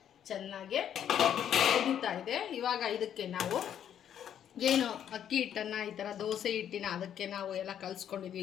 ಚೆನ್ನಾಗಿ ಕುದೀತಾ ಇದೆ. ಇವಾಗ ಇದಕ್ಕೆ ನಾವು ಏನು ಅಕ್ಕಿ ಹಿಟ್ಟನ್ನು ಈ ಥರ ದೋಸೆ ಹಿಟ್ಟಿನ ಅದಕ್ಕೆ ನಾವು ಎಲ್ಲ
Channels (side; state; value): right; quieter; 9.6 dB